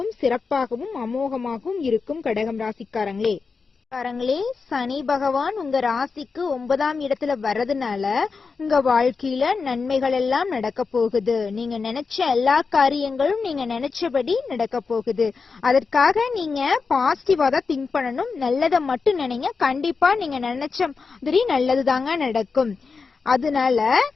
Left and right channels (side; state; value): right; quieter; 4.8 dB